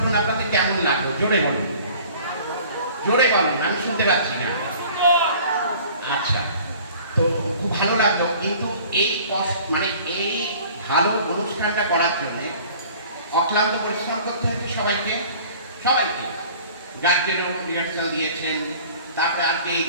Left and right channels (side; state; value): both; inverted; correlation -0.48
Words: আপনাদের কেমন লাগলো? জোরে বলুন, জোরে বলুন, আমি শুনতে পাচ্ছি না। আচ্ছা, তো খুব ভালো লাগলো। কিন্তু এই এই ভালো অনুষ্ঠানটা করার জন্য অক্লান্ত পরিশ্রম করতে হয়েছে সবাইকে। গার্জেনও রিহার্সাল দিয়েছেন, তারপরে আজকে এই